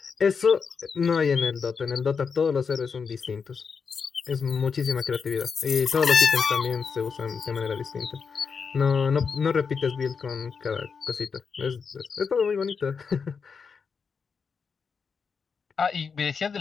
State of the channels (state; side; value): quieter; right; 5.8 dB